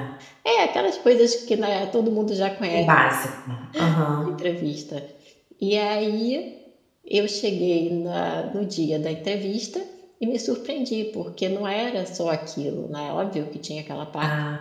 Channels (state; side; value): identical; both; correlation 1.00